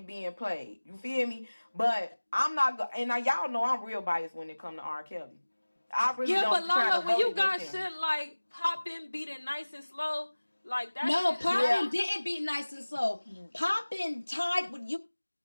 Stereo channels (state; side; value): inverted; both; correlation -1.00